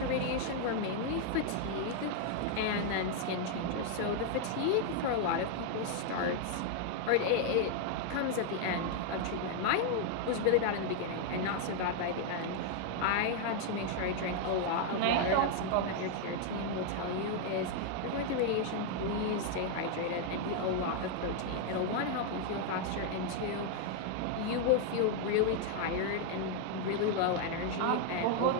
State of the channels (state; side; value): different; both; correlation 0.00